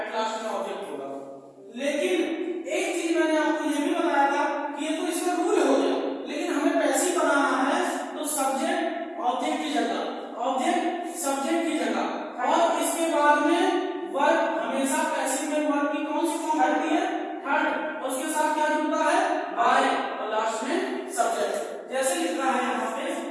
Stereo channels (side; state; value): both; identical; correlation 1.00